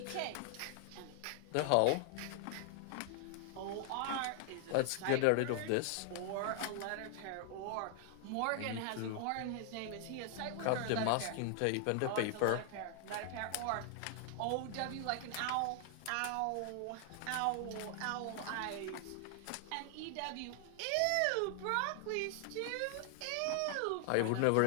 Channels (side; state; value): both; different; correlation 0.00